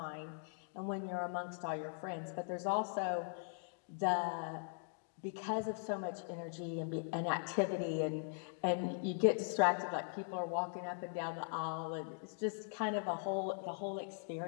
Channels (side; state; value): right; silent; digital silence